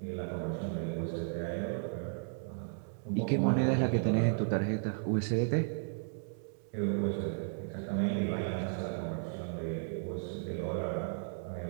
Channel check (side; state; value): left; silent; 55 dB below the other